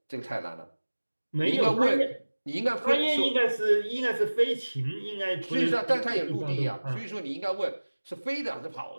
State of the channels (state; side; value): inverted; both; correlation -1.00